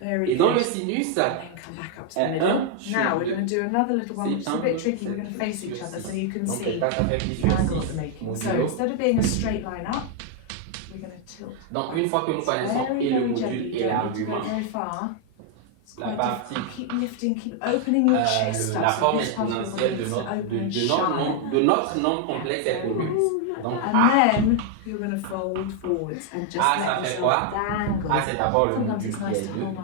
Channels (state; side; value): different; both; correlation 0.00